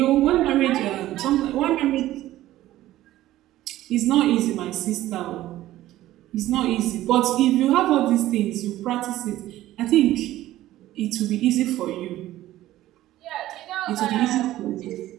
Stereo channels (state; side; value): quieter; left; 14.8 dB